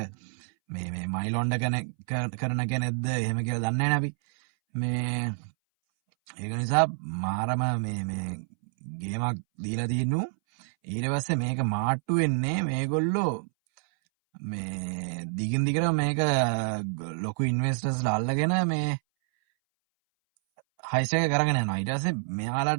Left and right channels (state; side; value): silent; left; 59 dB below the other